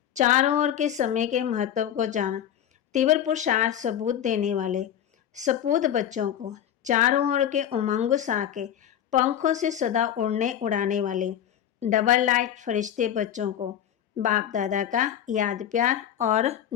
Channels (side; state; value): right; quieter; 10.1 dB